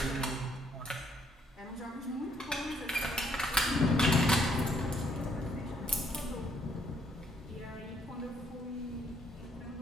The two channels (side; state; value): both; normal; correlation 0.69